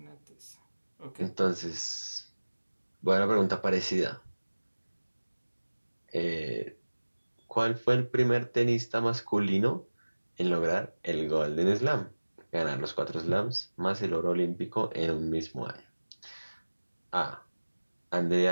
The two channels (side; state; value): both; inverted; correlation -1.00